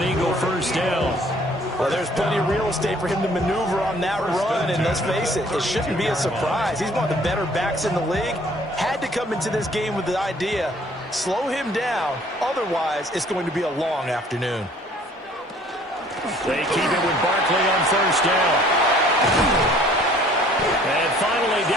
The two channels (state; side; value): normal; both; correlation 0.57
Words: Eagle first down. Well, there's plenty of real estate for him to maneuver on that run, and let's face it, it shouldn't be a surprise. He's one of the better backs in the league. Had to come into this game with the idea, slow him down, otherwise it's going to be a long afternoon. They keep it with Barkley on first down. And finally,